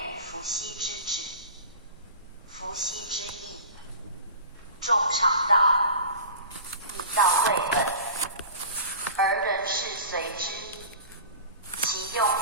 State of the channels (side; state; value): both; inverted; correlation -0.37